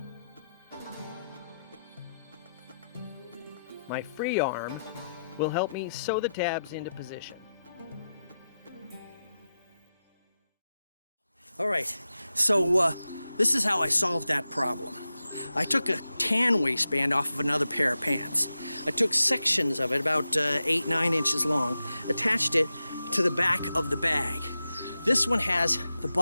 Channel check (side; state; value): both; inverted; correlation -0.90